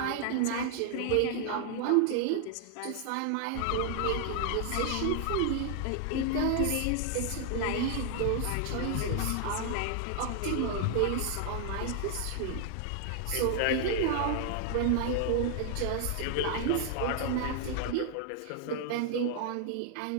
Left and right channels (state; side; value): different; both; correlation 0.00